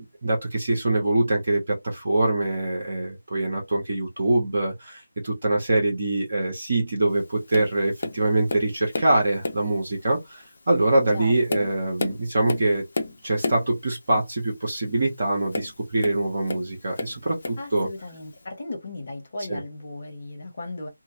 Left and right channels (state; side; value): inverted; both; correlation -0.91